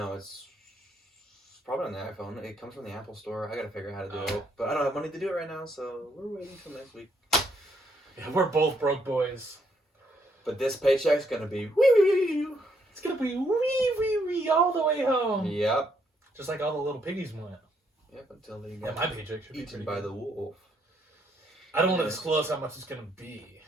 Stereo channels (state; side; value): normal; both; correlation 0.73